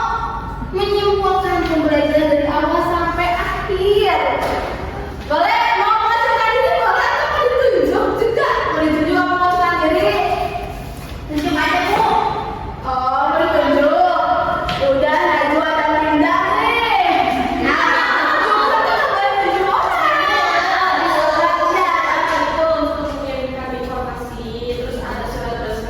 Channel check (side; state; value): both; identical; correlation 1.00